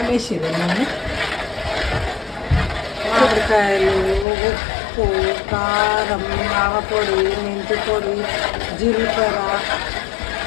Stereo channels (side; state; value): right; drops out; at 4.2 s